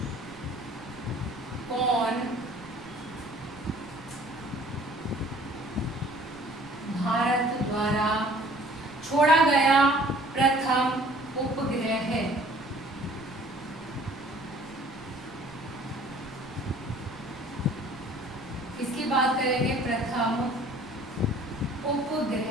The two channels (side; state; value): right; noise; rumble, 21 dB below the sound